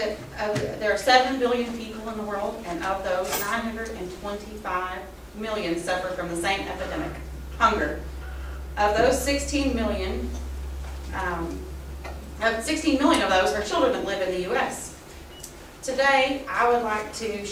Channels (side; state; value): both; identical; correlation 1.00